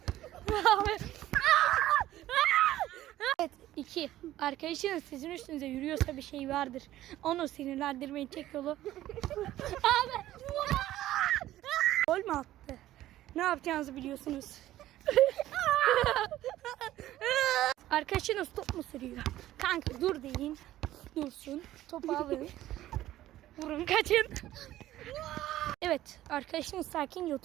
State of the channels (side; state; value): left; quieter; 14.2 dB